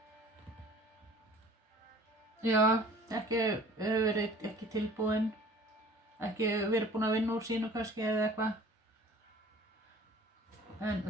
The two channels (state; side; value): normal; both; correlation 0.48